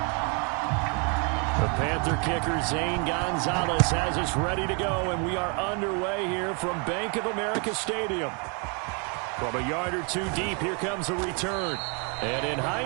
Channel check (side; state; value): left; quieter; 34.0 dB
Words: The Panther kicker, Zane Gonzalez, has us ready to go, and we are underway here from Bank of America Stadium. From a yard or two deep, here comes a return. And in